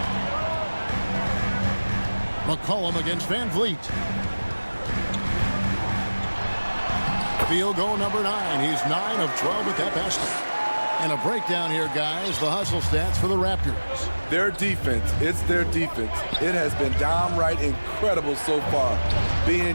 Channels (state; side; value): inverted; both; correlation -1.00